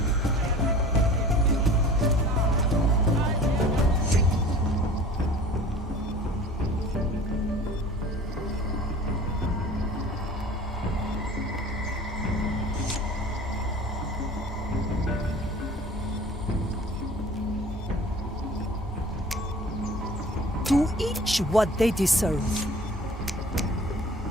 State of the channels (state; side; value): normal; both; correlation 0.44